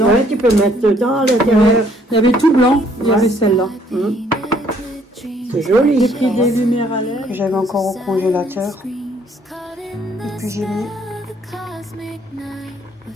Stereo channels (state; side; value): normal; both; correlation 0.64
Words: Ouais, tu peux mettre dedans à l'intérieur. Il y avait tout blanc, il y avait celle-là. C'est joli. J'ai pris des lumières à LED. J'avais encore au congélateur. Et puis j'ai mis.